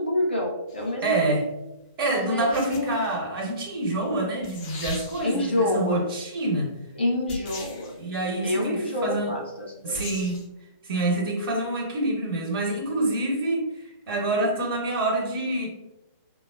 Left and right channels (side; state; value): both; inverted; correlation -0.39